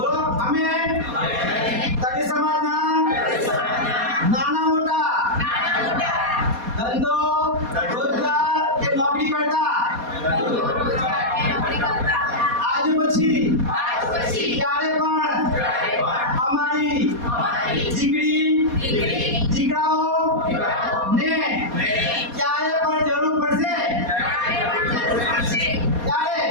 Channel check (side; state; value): left; late; 4.2 ms